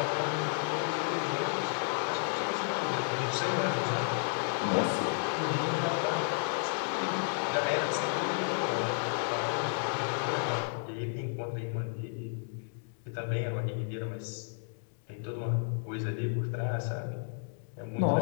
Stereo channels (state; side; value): silent; right; digital silence